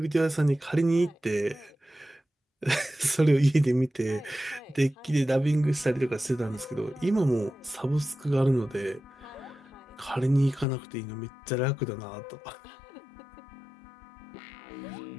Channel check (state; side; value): drops out; right; at 10.7 s